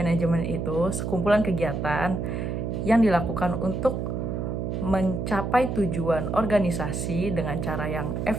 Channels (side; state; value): right; noise; hum, 2 dB below the sound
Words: itu sekumpulan kegiatan yang dilakukan untuk mencapai tujuan organisasi dengan cara yang